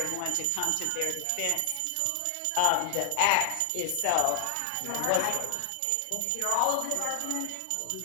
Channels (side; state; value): both; different; correlation 0.00